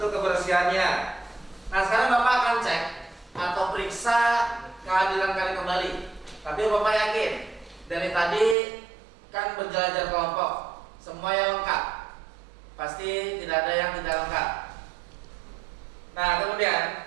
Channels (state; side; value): drops out; left; at 8.6 s